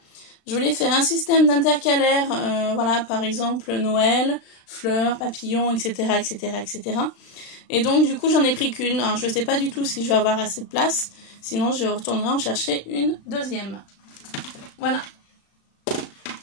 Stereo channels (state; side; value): late; right; 36 ms